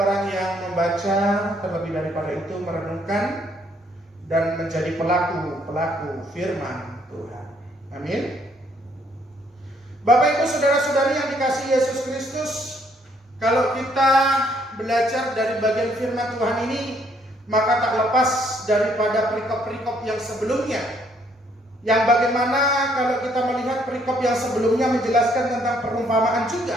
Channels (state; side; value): normal; both; correlation 0.68